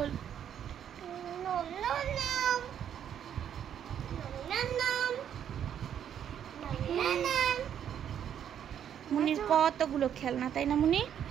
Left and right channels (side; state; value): left; quieter; 9.3 dB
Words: মুনির কতগুলো খেলনা, তাই না মুনি?